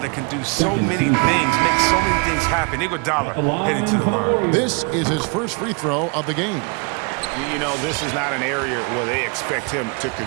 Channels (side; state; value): left; quieter; 34.3 dB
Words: can do so many things, make so many things happen. Iguodala heading to the line. This is his first free throw of the game. You know, this is not an area where they expect him to